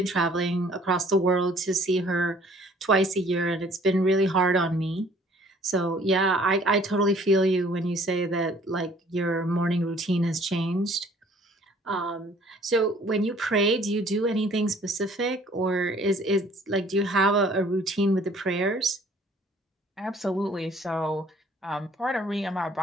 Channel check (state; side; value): normal; both; correlation 0.56